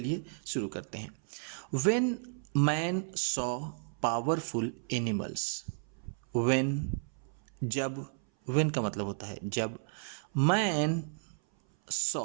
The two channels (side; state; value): left; silent; 56 dB below the other